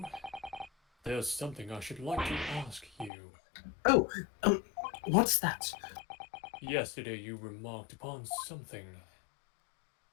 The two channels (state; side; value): drops out; right; at 3.1 s